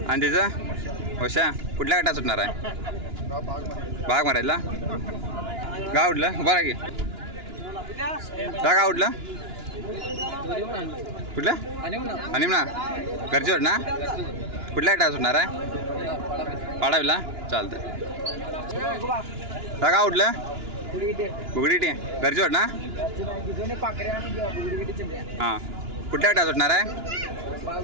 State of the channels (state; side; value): late; left; 2.9 ms